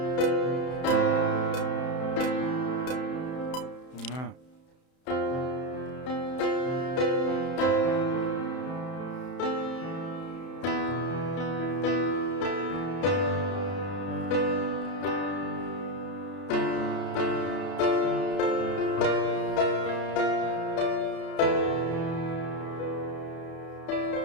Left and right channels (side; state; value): right; late; 31 ms